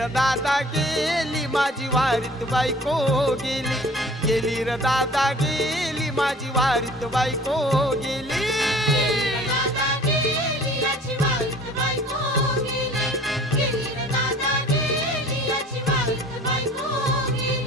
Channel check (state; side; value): normal; both; correlation 0.48